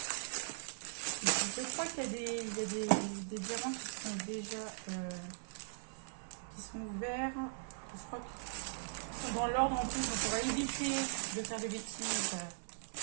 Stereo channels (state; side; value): silent; left; 51 dB below the other